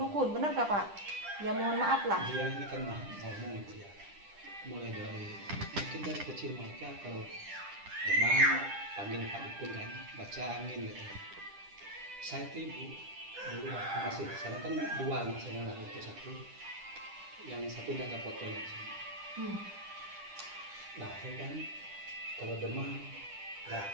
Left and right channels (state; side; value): late; left; 10 ms